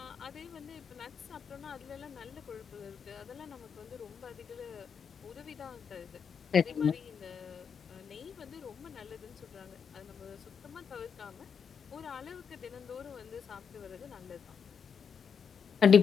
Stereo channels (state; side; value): quieter; right; 6.7 dB